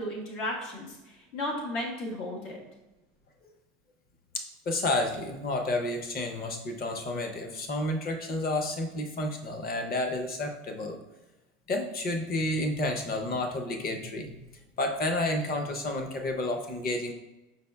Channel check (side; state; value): both; normal; correlation 0.34